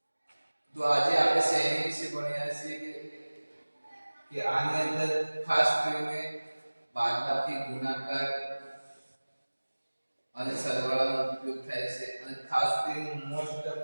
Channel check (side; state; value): both; inverted; correlation -1.00